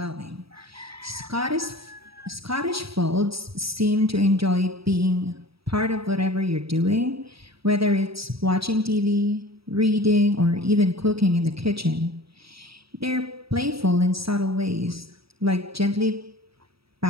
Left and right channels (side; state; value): left; late; 0.76 ms